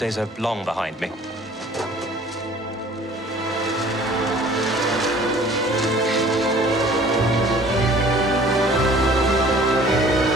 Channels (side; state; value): both; normal; correlation 0.51